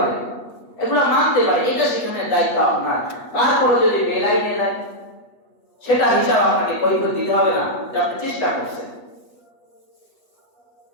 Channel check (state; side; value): late; right; 8.4 ms